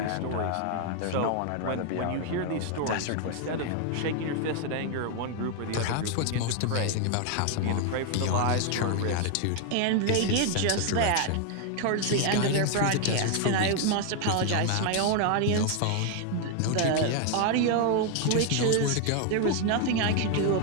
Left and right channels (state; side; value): different; both; correlation 0.00